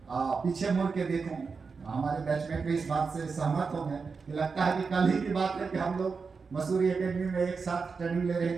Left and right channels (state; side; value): quieter; left; 5.0 dB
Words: पीछे मुड़ के देखूं, हमारे बैचमेट भी इस बात से सहमत होंगे कि लगता है कि कल ही की बात है कि हम लोग मसूरी एकेडमी में एक साथ ट्रेनिंग ले